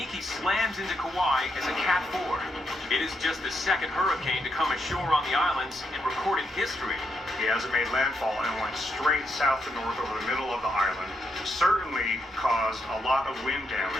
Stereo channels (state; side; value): normal; both; correlation 0.80